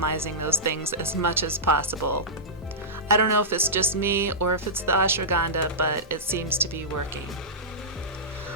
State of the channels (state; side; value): normal; both; correlation -0.14